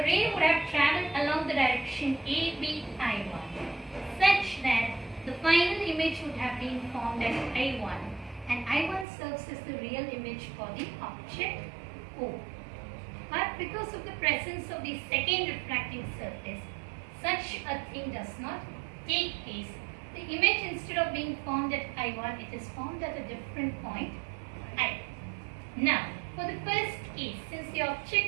would have travelled along the direction ABI1 such that the final image would have been formed as I1 and I1 serves as the real image for the object O. But because of the presence of the second refracting surface, such a thing does not take place. The image, instead of being formed at I1, it is formed at a different point I. Now, for the first case, since the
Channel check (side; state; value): left; drops out; at 9.1 s